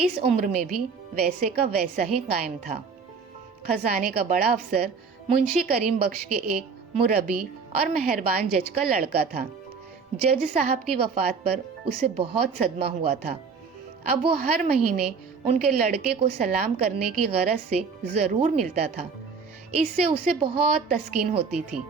عمر میں بھی ویسے کا ویسا ہی قائم تھا. خزانے کا بڑا افسر منشی کریم بخش کے ایک مربی اور مہربان جج کا لڑکا تھا. جج صاحب کی وفات پر اسے بہت صدمہ ہوا تھا. اب وہ ہر مہینے ان کے لڑکے کو سلام کرنے کی غرض سے ضرور ملتا تھا. اس سے اسے بہت تسکین ہوتی تھی.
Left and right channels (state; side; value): quieter; left; 5.3 dB